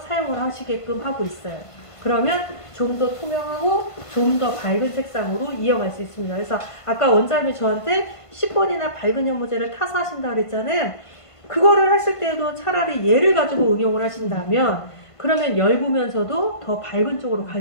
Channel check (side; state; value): right; late; 1.5 ms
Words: 사용을 하시게끔 하고 있어요. 그러면 좀 더 투명하고 좀 더 밝은 색상으로 이어갈 수 있습니다. 그래서 아까 원장님이 저한테 10번이나 밝은 연모제를 타서 하신다 그랬잖아요. 그거를 하실 때도 차라리 얘를 가지고 응용을 하신다면 그러면 엷으면서도 더 밝은 쪽으로